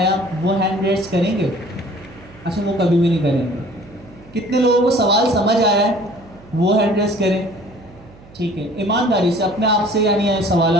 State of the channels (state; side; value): noise; right; hum, 23 dB below the sound